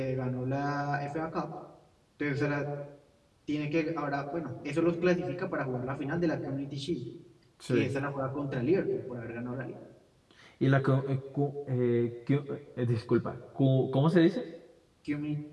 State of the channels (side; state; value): both; identical; correlation 1.00